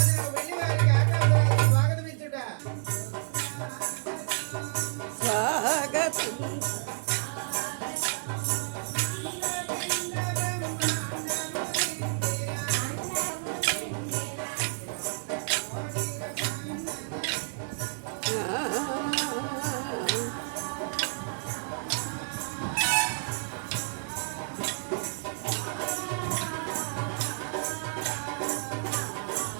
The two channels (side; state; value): left; silent; digital silence